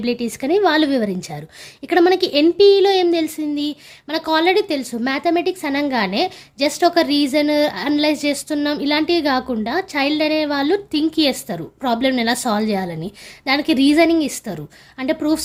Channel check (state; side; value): identical; both; correlation 1.00